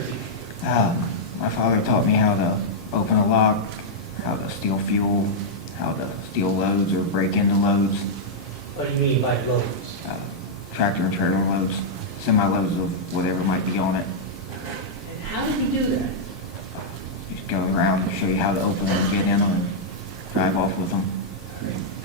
teaching. My father taught me how to open a lock, how to steal fuel, how to steal loads or break into loads, What do you mean by loads? tractor and trailer loads, semi-loads of whatever might be on it. And how did he do that? Just go around and show you how to open them and get in them and drive off with them.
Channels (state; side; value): normal; both; correlation -0.07